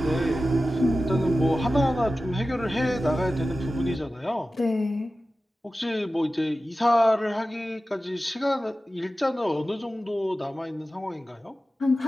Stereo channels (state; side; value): normal; both; correlation 0.95